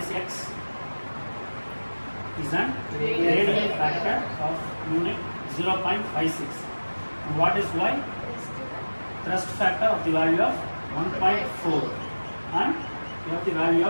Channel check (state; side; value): inverted; both; correlation -1.00